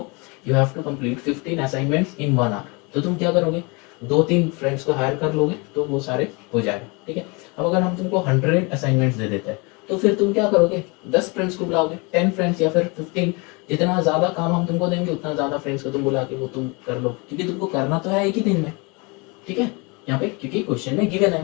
you have to complete 15 assignments in 1 hour, तो तुम क्या करोगे 2-3 फ्रेंड्स को हायर कर लोगे तो वो सारे हो जाएगा, ठीक है। अब अगर हम तुमको 100 असाइनमेंट्स दे देते हैं तो फिर तुम क्या करोगे 10 फ्रेंड्स को बुलाओगे, 10 फ्रेंड्स या फिर 15, जितना ज़्यादा काम हम तुमको देंगे उतना ज़्यादा फ्रेंड्स को तुम बुला के वो तुम कर लो, क्योंकि तुमको करना तो है एक ही दिन में, ठीक है। यहाँ पे क्योंकि क्वेश्चन में गिवन है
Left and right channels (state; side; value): quieter; right; 28.9 dB